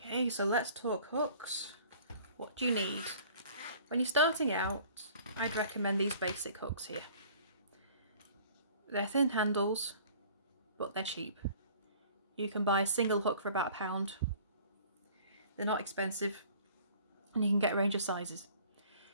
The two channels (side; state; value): both; inverted; correlation -0.51